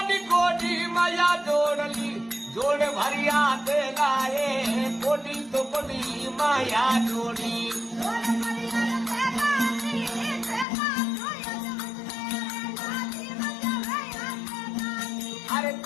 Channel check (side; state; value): right; drops out; at 10.7 s